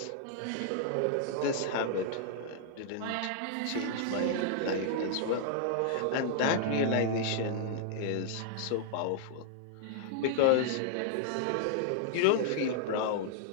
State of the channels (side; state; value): both; different; correlation -0.01